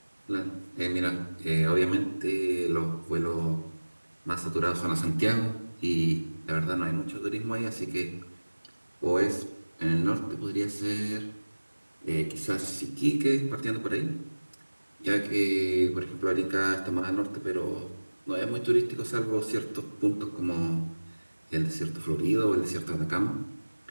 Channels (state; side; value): inverted; both; correlation -1.00